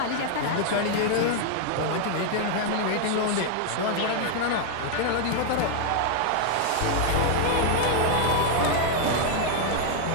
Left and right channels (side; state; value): both; different; correlation 0.00